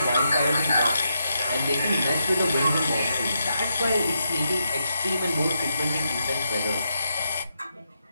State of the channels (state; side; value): inverted; both; correlation -0.83